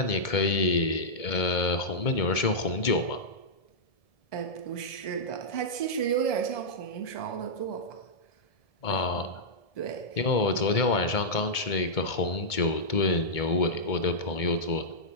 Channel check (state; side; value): late; right; 1.7 ms